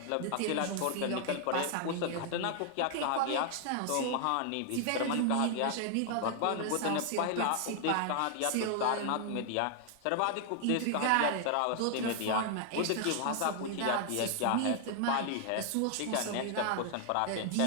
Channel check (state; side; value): different; both; correlation 0.00